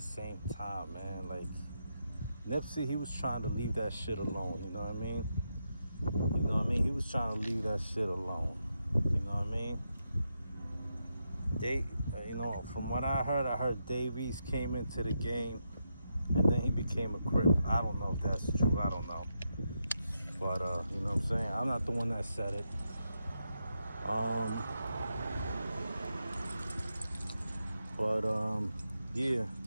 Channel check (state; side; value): inverted; both; correlation -0.84